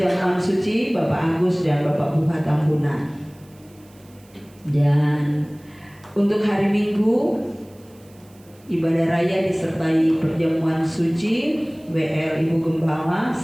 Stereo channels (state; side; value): noise; right; hiss, 29 dB below the sound